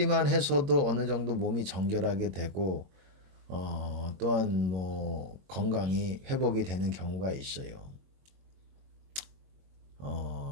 해서도 어느 정도 몸이 정결하게 되고 또한 뭐 건강이 회복이 되는 경우가 있어요.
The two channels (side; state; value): left; late; 22 ms